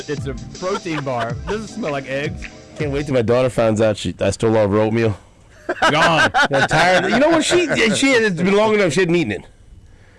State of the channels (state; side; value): identical; both; correlation 1.00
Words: It's a protein bar. Doesn't smell like eggs. Can't wait till my daughter finds out I stole all of her oatmeal. Gone. I'm tired. You know what? It's been long enough. She hadn't eaten it.